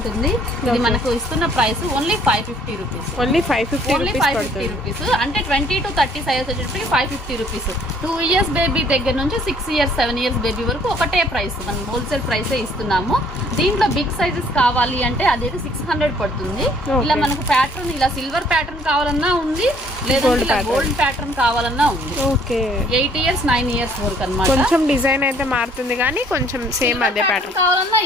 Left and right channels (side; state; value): both; normal; correlation 0.61